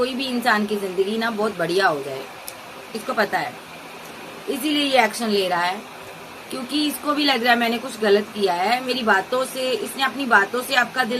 भी इंसान की जिंदगी ना बहुत बढ़िया हो जाए, इसको पता है, इसीलिए ये एक्शन ले रहा है। क्योंकि इसको भी लग रहा है मैंने कुछ गलत किया है, मेरी बातों से, इसने अपनी बातों से आपका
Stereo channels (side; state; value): both; identical; correlation 1.00